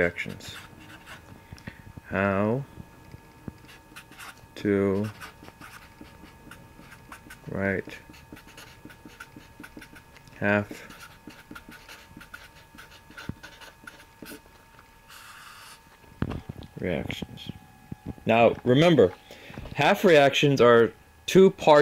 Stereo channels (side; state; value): both; identical; correlation 1.00